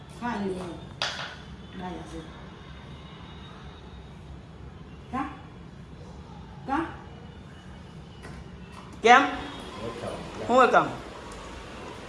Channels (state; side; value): identical; both; correlation 1.00